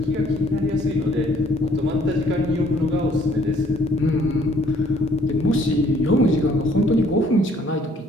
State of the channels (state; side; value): normal; both; correlation 0.61